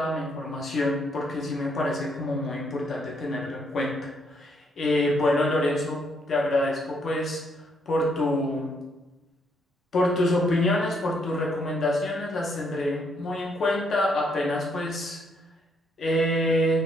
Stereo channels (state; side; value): normal; both; correlation 0.72